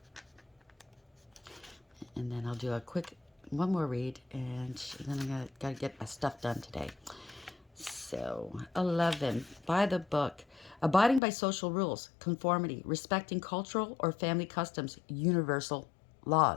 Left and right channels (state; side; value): drops out; right; at 11.2 s